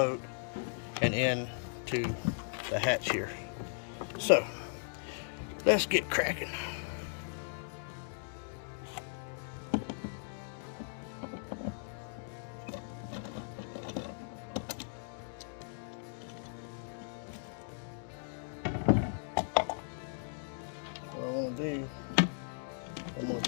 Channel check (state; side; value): silent; right; digital silence